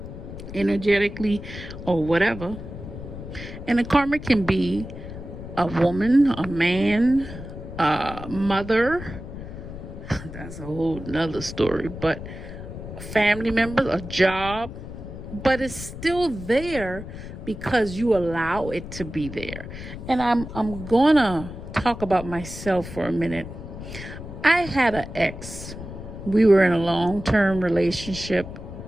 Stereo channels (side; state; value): left; noise; rumble, 11 dB below the sound